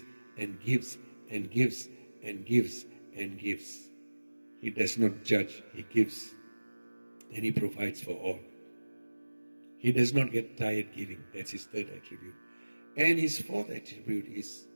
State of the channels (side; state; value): both; inverted; correlation -1.00